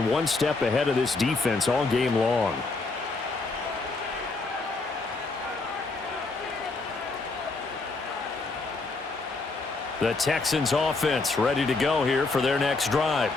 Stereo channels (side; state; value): right; quieter; 3.7 dB